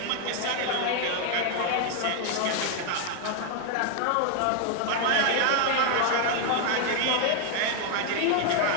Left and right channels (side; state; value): both; different; correlation 0.00